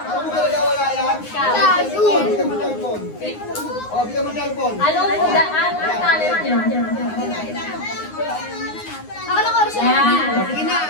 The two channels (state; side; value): late; right; 9.6 ms